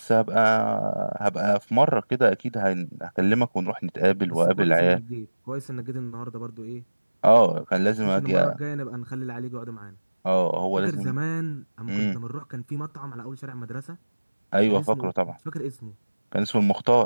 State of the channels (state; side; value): inverted; both; correlation -1.00